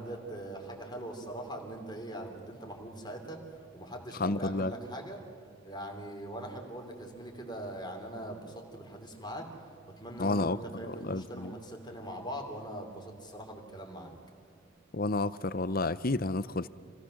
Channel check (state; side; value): normal; both; correlation 0.28